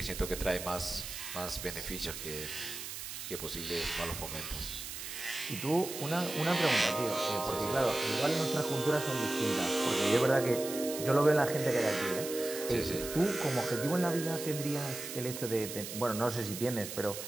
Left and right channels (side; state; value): right; noise; hiss, 8 dB below the sound